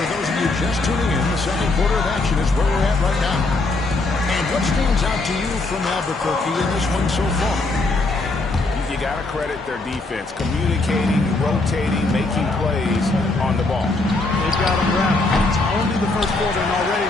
those of you just tuning in, the second quarter of action is where we're at right now. And what stands out to you from Albuquerque in this one so far? You got to credit their defense, communicating, rotating, making plays on the ball. They've got them wrapped. It's only the first quarter, and already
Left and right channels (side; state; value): right; quieter; 3.2 dB